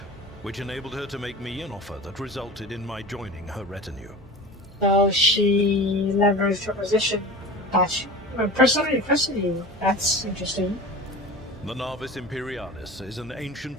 which enabled her to make me an offer that resulted in my joining her retinue. So she leveraged her position. Personally, that's interesting. The Navis Imperialis is an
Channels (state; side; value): normal; both; correlation 0.35